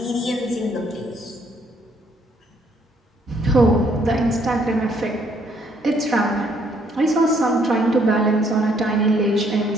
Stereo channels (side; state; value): both; normal; correlation 0.67